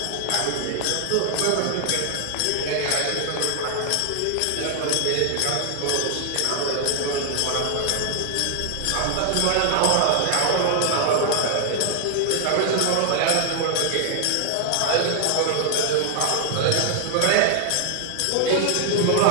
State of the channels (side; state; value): both; different; correlation 0.00